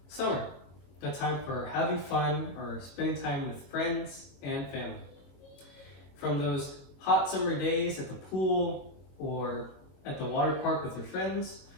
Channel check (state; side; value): late; right; 22 ms